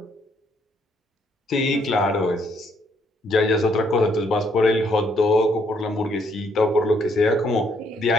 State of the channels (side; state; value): both; normal; correlation 0.70